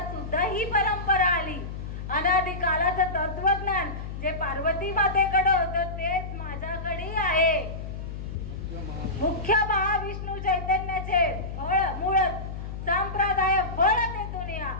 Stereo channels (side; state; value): left; noise; hum, 7 dB below the sound